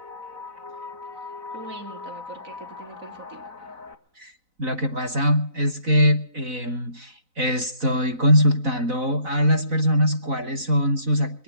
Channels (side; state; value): left; late; 4.0 ms